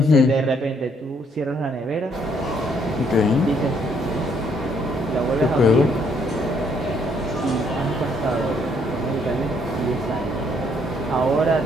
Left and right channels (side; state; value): both; normal; correlation 0.69